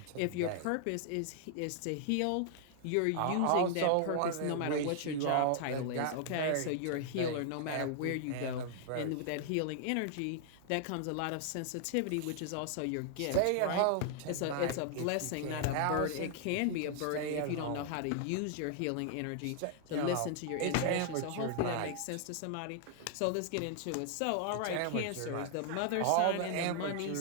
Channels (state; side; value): different; both; correlation 0.00